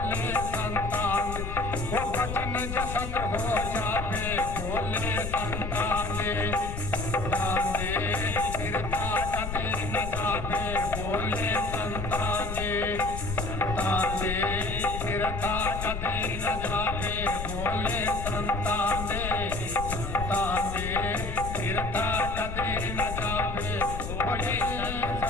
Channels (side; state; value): left; noise; rumble, 5 dB below the sound